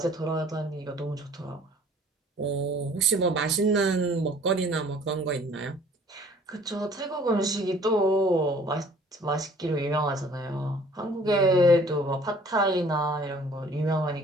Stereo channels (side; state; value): both; normal; correlation 0.53